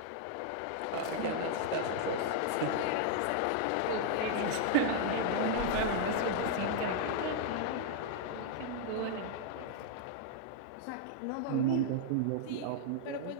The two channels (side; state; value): both; different; correlation -0.01